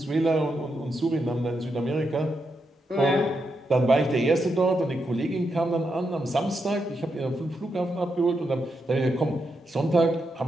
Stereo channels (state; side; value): normal; both; correlation 0.83